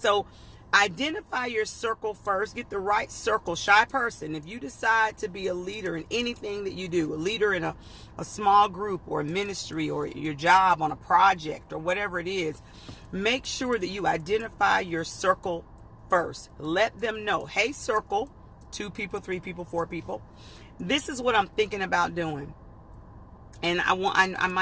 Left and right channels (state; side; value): identical; both; correlation 1.00